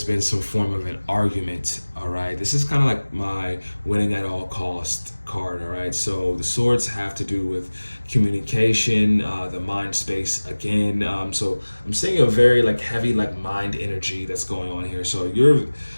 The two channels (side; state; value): both; inverted; correlation -1.00